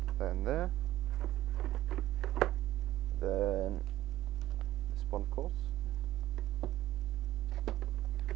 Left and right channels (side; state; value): left; quieter; 14.8 dB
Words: then there. Then this one, of course.